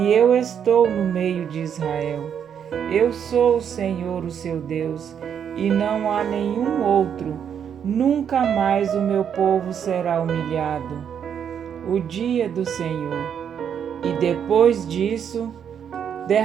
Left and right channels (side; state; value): left; quieter; 8.2 dB